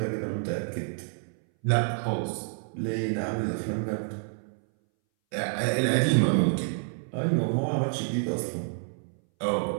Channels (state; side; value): silent; left; 59 dB below the other